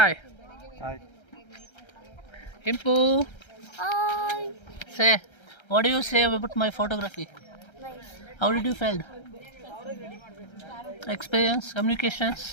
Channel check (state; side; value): late; right; 1.3 ms